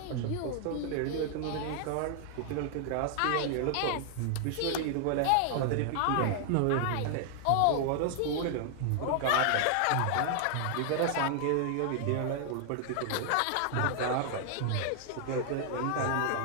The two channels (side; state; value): both; different; correlation 0.00